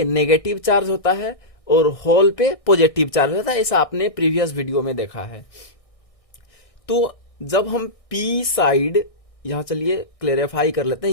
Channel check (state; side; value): late; right; 1.6 ms